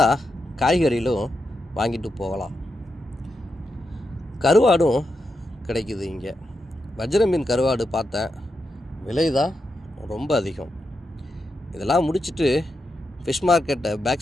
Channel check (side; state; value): both; normal; correlation 0.86